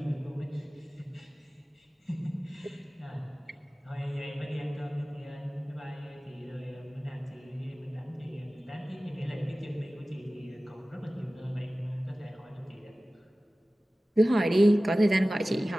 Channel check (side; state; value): both; normal; correlation 0.97